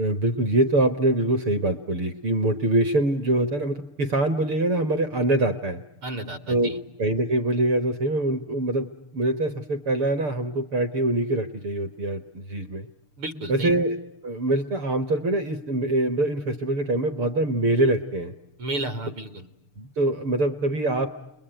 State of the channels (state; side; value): late; left; 6.8 ms